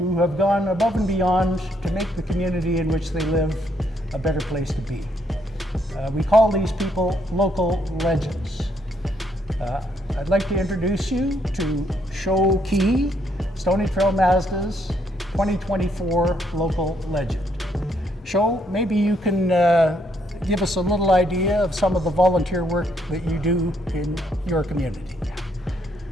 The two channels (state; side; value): normal; both; correlation 0.72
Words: have gone above and beyond to make the community in which they live a better place to be. We call these people local legends. I'd like to introduce you to Shuo Qiu, Stoney Trail Mazda's 2024 local legend. Shuo, maybe you can give us a little idea of some of the volunteer work that you do in your community.